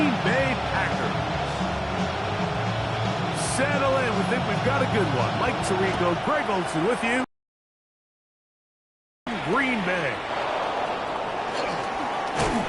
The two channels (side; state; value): both; identical; correlation 1.00